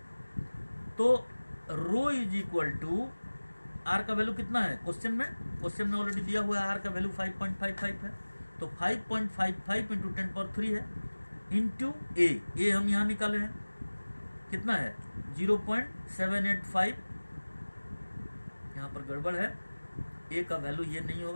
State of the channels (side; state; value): both; inverted; correlation -1.00